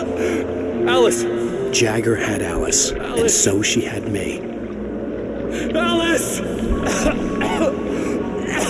Alice! Jagger had Alice, and so she had me. Alice!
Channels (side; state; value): both; identical; correlation 1.00